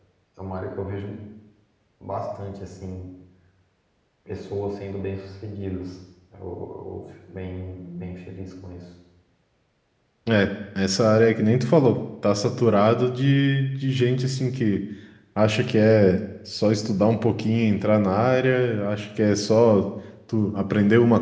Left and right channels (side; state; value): both; identical; correlation 1.00